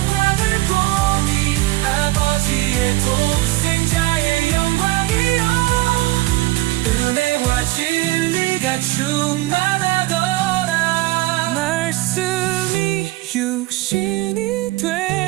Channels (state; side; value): quieter; left; 19.2 dB